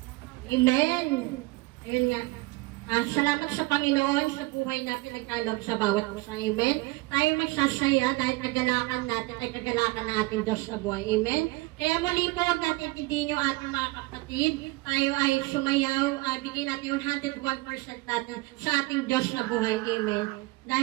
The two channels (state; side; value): quieter; left; 22.6 dB